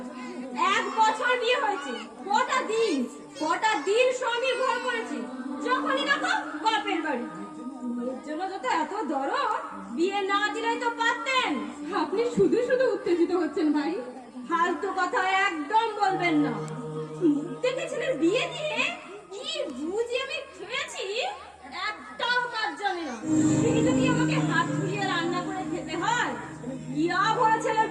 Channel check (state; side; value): identical; both; correlation 1.00